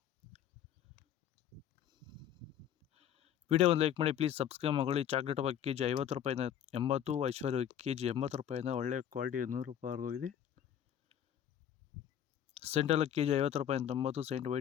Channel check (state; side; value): quieter; right; 10.0 dB